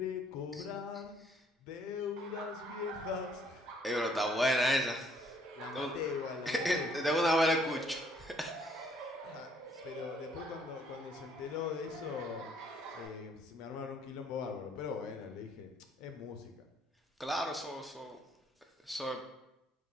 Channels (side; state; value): both; normal; correlation 0.65